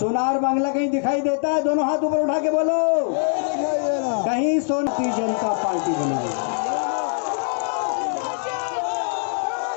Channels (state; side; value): silent; right; 64 dB below the other